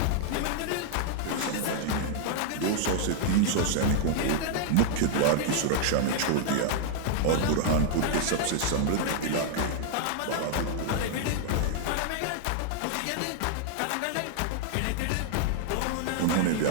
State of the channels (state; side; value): different; both; correlation -0.01